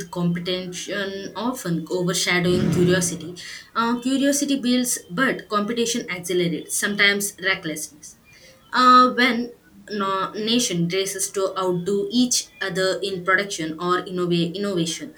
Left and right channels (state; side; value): identical; both; correlation 1.00